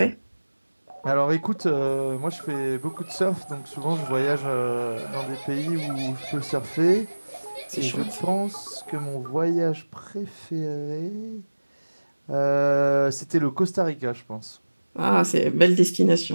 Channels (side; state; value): both; inverted; correlation -1.00